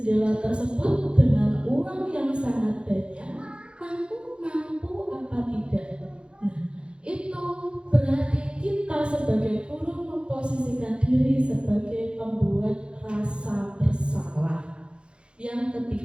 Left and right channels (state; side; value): late; left; 0.055 ms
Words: tersebut dengan uang yang sangat banyak, kamu mampu apa tidak? Nah, itu berarti kita sebagai guru memposisikan diri sebagai pembuat rasa bersalah. Yang